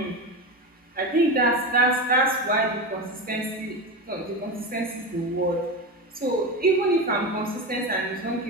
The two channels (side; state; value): both; normal; correlation 0.20